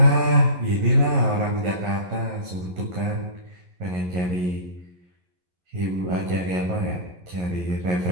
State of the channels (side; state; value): left; late; 11 ms